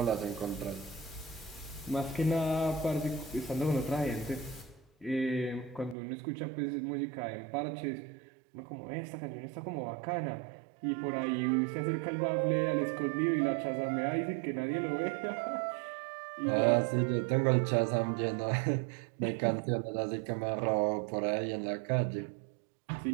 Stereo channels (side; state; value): left; drops out; at 6.0 s